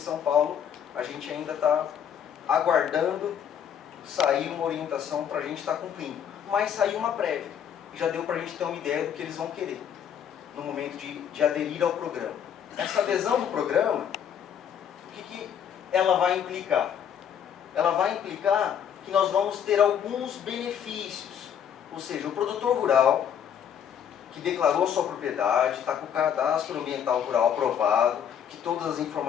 Paulo, a gente ainda está aguardando sair uma orientação para a gente estar cumprindo. Mas saiu uma prévia, e já deu para a gente ter uma ideia do que eles vão querer no momento de aderir ao programa. Essa adesão do programa, o que ela vai implicar? Ela vai implicar que nós vamos ter alguns benefícios. Ou seja, o produtor rural que declarou sua propriedade, está com o cadastro ambiental rural aprovado, que todas as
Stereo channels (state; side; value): quieter; right; 8.7 dB